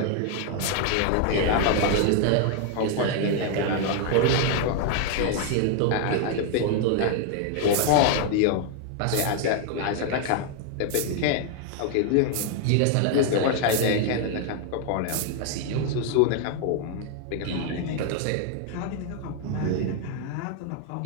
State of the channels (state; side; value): different; both; correlation 0.00